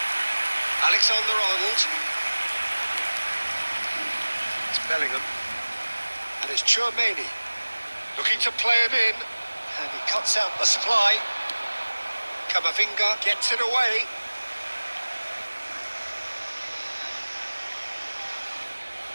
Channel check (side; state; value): both; inverted; correlation -1.00